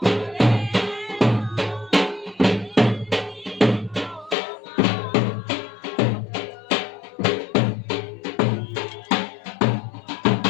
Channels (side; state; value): right; drops out; at 4.4 s